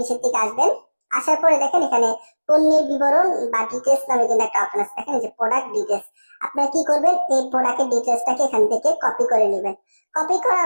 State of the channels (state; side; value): inverted; both; correlation -1.00